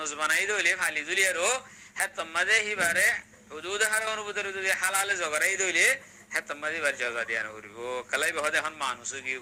বানাই দইলে ফালি দুলিয়ারো হেতমাদে হিবারে হুদুদ হারার ভিতরে যদি হালালে জগরাই দইলে হেতমাদে বার জাজা দিয়া করিব কালাই বহদে এখন মানুষ কি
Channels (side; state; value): both; identical; correlation 1.00